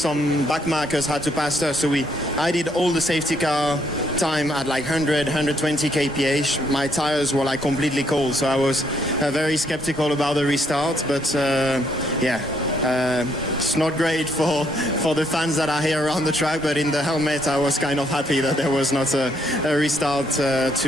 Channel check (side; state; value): both; normal; correlation 0.71